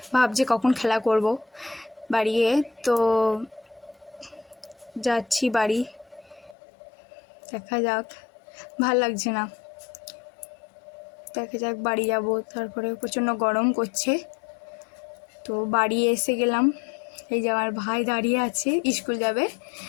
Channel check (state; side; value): drops out; right; at 6.6 s